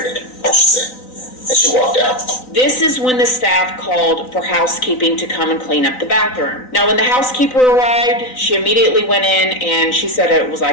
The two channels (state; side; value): late; right; 3.9 ms